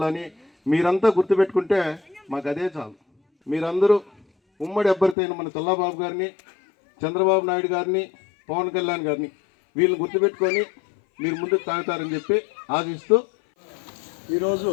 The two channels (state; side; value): drops out; right; at 5.2 s